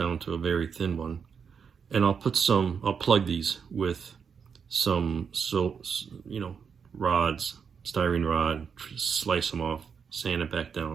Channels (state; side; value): quieter; left; 6.5 dB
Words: to a very thin one. And I'll plug these with some, rods, styrene rod, slice them off, sand it back